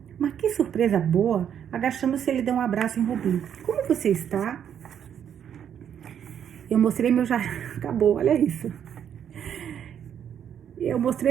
Mas que surpresa boa! Agachando-se, ele deu um abraço em Ruby. Como você está? Eu mostrei meu jardim... Acabou, olha isso. Eu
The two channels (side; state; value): left; quieter; 8.9 dB